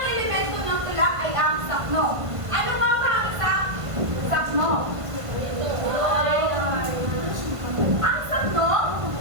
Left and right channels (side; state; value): left; late; 1.5 ms